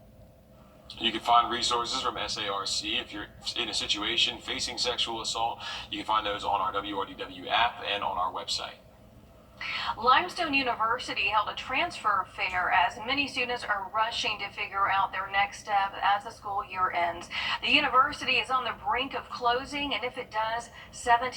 You can find resources from SARC if you're in a situation facing sexual assault. You can find those on our WRDW app and on our website. Limestone University held a transfer fair as many students are rushing to figure out their next step as the school year ends. The university is on the brink of closing, and if it does,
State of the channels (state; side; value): identical; both; correlation 1.00